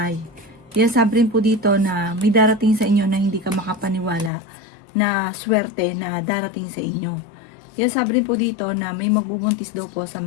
Yan sabi rin po dito na may darating sa inyo na hindi ka makapaniwala na swerte na darating sa inyo. Yan sabi rin po dito na may magbubuntis daw po sa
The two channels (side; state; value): right; drops out; at 4.3 s